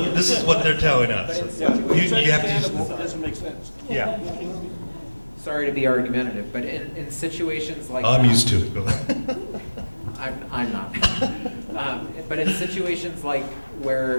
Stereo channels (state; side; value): inverted; both; correlation -1.00